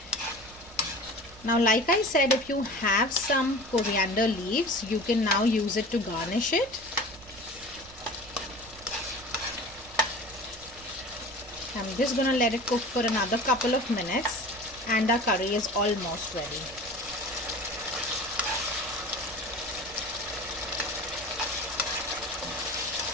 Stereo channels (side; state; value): right; noise; rumble, 21 dB below the sound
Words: Now, like I said, if you have some coriander leaves, you can now use it to garnish it. I'm just going to let it cook for another couple of minutes, and our curry is almost ready.